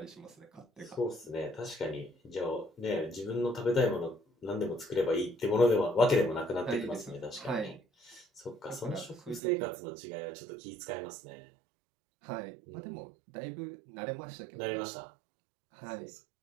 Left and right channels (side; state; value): left; drops out; at 9.4 s